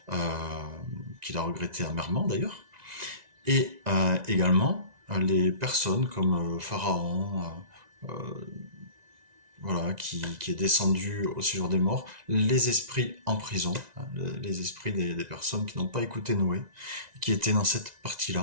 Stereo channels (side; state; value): left; late; 1.9 ms